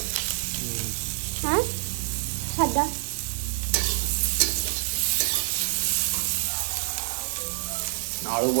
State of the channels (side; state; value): left; silent; digital silence